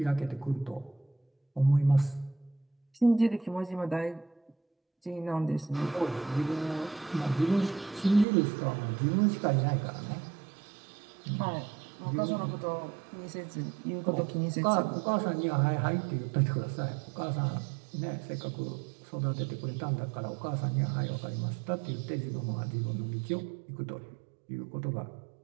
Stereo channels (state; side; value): drops out; left; at 8.2 s